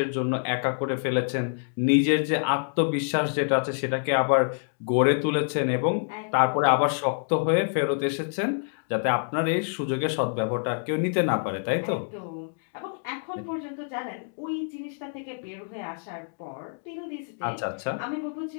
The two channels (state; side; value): silent; right; digital silence